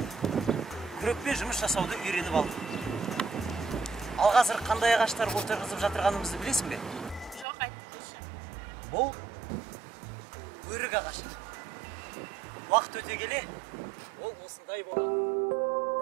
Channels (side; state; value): left; drops out; at 7.5 s